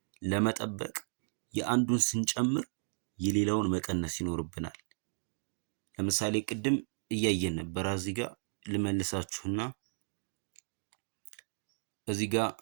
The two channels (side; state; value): left; silent; digital silence